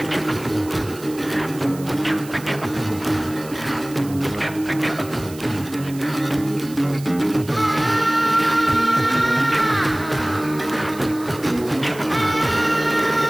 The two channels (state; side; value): noise; right; hiss, 18 dB below the sound